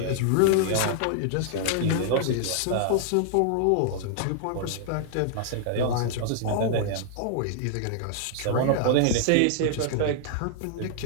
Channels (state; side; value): different; both; correlation -0.01